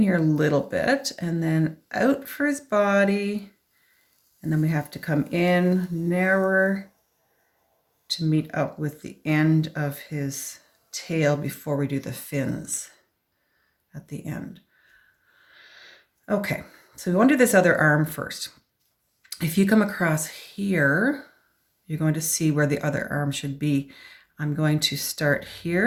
here a little bit and then out for his body. And then we have to come in narrower to meet up with the end of his tail before we do the fins at the end. Okay, so we want to do this other arm first. If you come across here, you're going to see where the other arm should be. I'm going to start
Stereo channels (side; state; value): both; identical; correlation 1.00